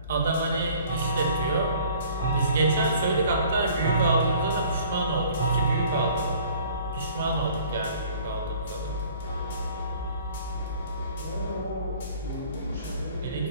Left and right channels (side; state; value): both; inverted; correlation -0.53